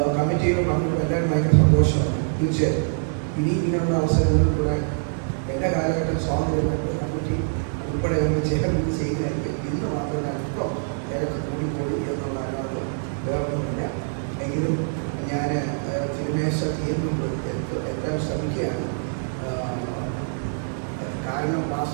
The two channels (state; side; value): silent; left; 60 dB below the other